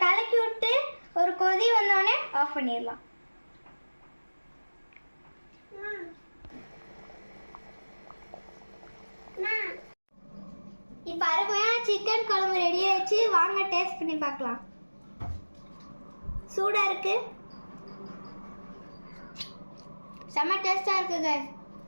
கலக்கி விட்டு ஒரு கொதி வந்தோடனே ஆஃப் பண்ணிடலாம். இப்போ அருமையான சிக்கன் குழம்பு ரெடி ஆயிடுச்சு. வாங்க டேஸ்ட் பண்ணி பார்க்கலாம். சூடா இருக்கு, செம்ம டேஸ்டா இருக்கு கைஸ்.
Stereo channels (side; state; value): both; inverted; correlation -1.00